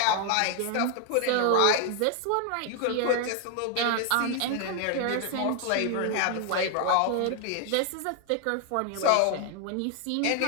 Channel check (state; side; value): different; both; correlation 0.00